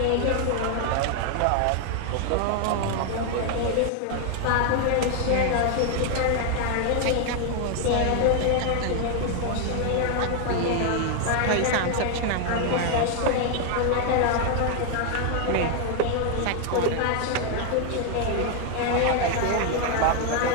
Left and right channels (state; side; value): different; both; correlation 0.00